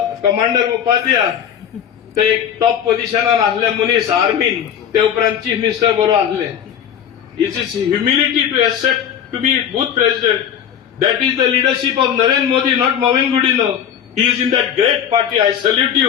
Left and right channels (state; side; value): quieter; right; 9.0 dB